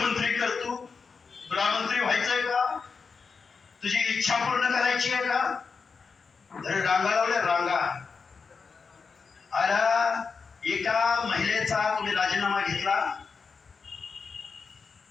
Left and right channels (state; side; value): quieter; right; 5.1 dB